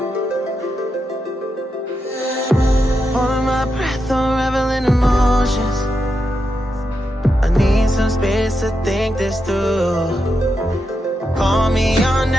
Holding my breath, unraveling emotions. I need some space to think this through. Call me all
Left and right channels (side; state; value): both; normal; correlation 0.86